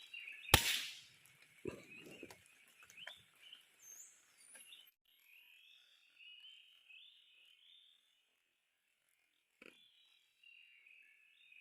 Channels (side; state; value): both; identical; correlation 1.00